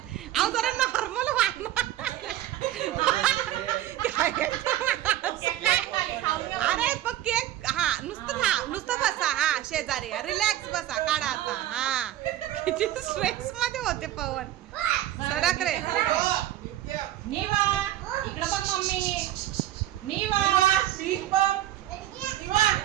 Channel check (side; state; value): left; quieter; 13.4 dB